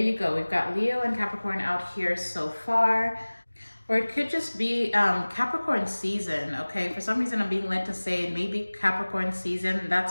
go. We've got Leo and Capricorn out here so far. Or it could just be Capricorn season, okay? For some reason, I'm being led to say maybe Capricorn season.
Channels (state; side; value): inverted; both; correlation -1.00